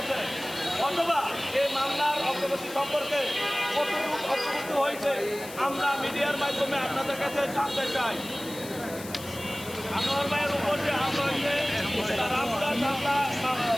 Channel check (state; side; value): noise; left; hiss, 14 dB below the sound